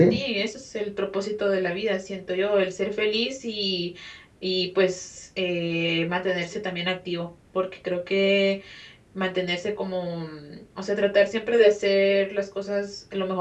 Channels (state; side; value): identical; both; correlation 1.00